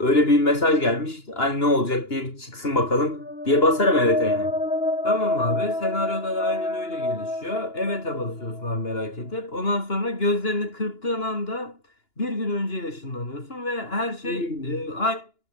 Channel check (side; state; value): right; late; 2.9 ms